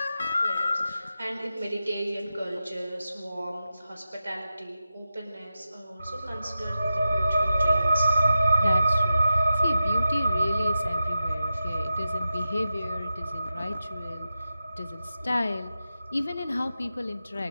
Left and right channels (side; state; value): both; inverted; correlation -0.91